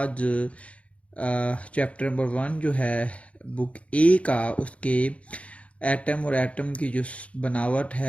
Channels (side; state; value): right; late; 0.063 ms